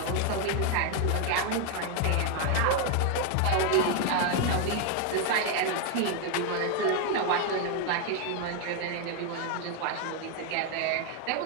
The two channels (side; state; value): both; different; correlation 0.01